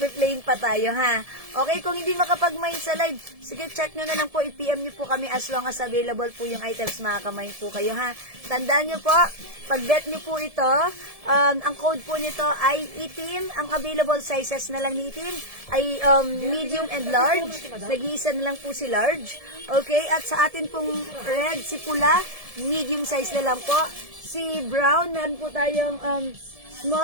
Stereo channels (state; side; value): late; left; 1.7 ms